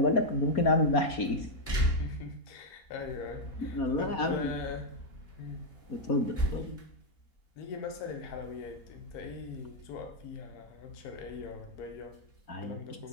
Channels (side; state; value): right; late; 4.2 ms